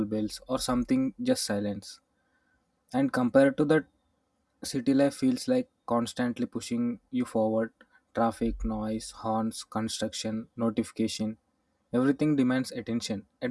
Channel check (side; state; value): both; identical; correlation 1.00